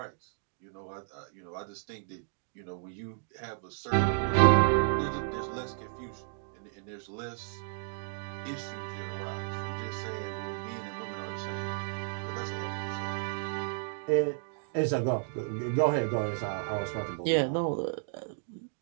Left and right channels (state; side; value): silent; left; digital silence